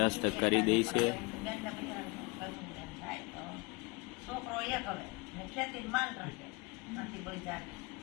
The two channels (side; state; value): right; quieter; 26.9 dB